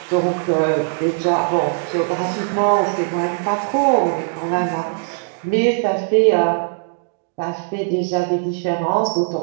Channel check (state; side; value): silent; left; digital silence